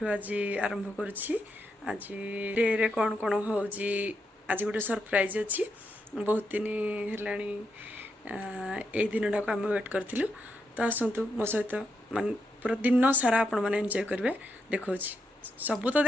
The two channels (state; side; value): normal; both; correlation 0.82